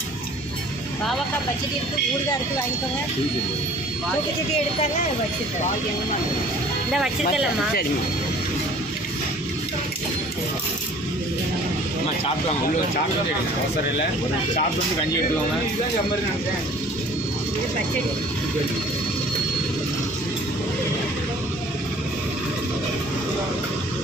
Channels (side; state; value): both; normal; correlation 0.51